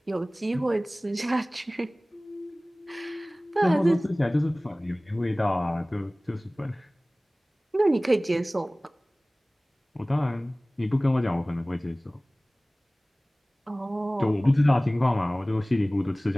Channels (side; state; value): both; normal; correlation 0.98